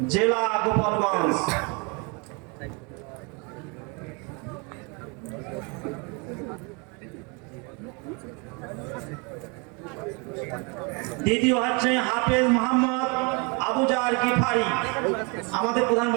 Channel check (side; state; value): left; quieter; 31.8 dB